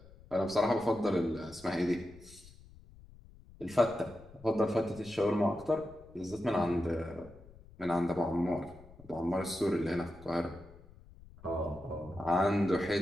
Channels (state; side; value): noise; left; rumble, 21 dB below the sound